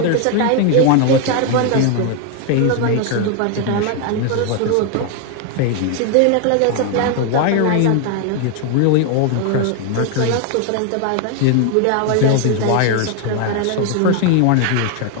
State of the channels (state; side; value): different; both; correlation 0.00